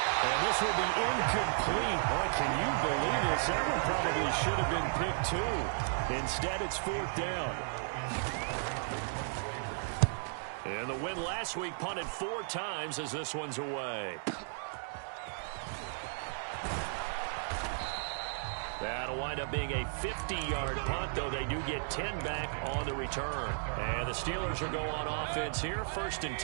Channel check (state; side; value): silent; left; digital silence